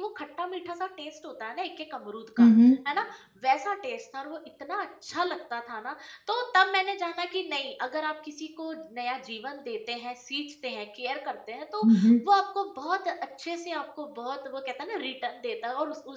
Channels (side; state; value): both; identical; correlation 1.00